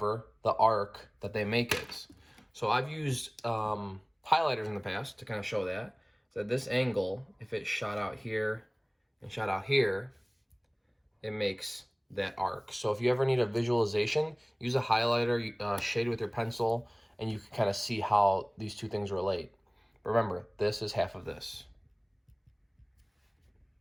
the arc that they make is. So I've used highlighters in the past to kind of show that. So this angle, if it shot out here and shot out here, it makes that arc. So if you ever need a visualization, use a highlighter, shade with your pencil, and you can kind of see how these two things relate. But remember, this is half of this.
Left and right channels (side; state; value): both; identical; correlation 1.00